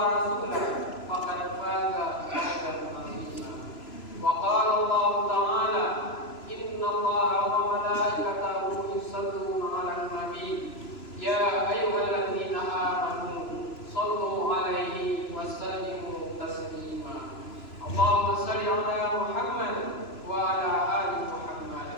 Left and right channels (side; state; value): right; late; 3.0 ms